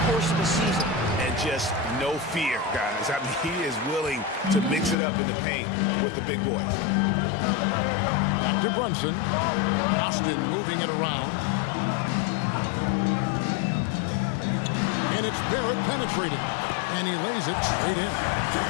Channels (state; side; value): drops out; right; at 5.0 s